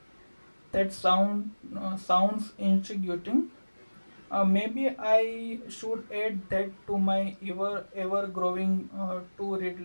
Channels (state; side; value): inverted; both; correlation -1.00